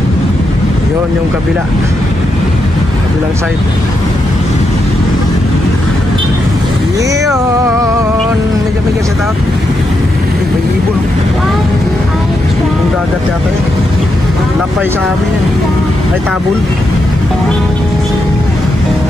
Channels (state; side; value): normal; both; correlation 0.83